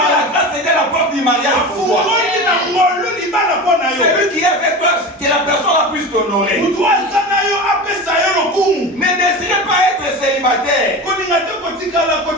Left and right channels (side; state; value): both; normal; correlation 0.28